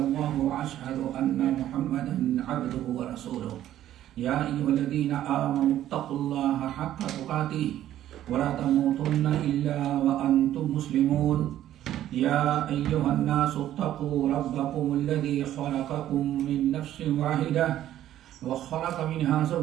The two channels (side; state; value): left; quieter; 12.4 dB